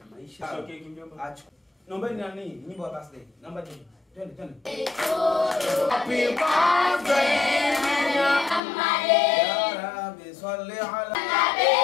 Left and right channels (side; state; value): right; drops out; at 8.6 s